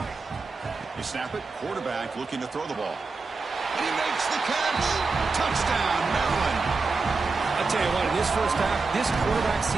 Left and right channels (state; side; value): quieter; left; 4.1 dB